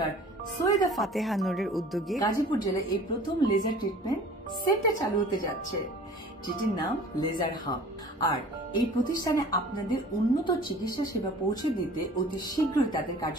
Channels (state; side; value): normal; both; correlation 0.46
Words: সৈয়দা ফাতেহা নূরের উদ্যোগে গাজীপুর জেলায় এই প্রথম লেজার ট্রিটমেন্ট সেন্টার চালু হতে যাচ্ছে, যেটির নাম লেজার হাব। আর এই প্রতিষ্ঠানে আপনাদের উন্নত চিকিৎসা সেবা পৌঁছে দিতে অতি শীঘ্রই তাদের